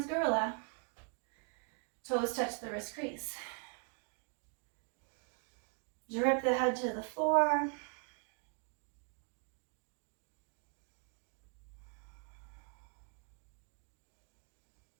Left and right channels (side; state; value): left; quieter; 39.7 dB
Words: gorilla. Toes touch the wrist crease. Drip the head to the floor.